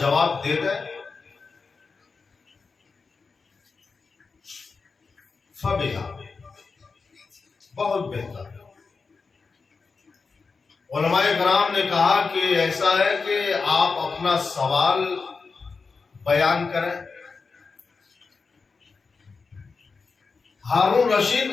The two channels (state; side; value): quieter; right; 4.6 dB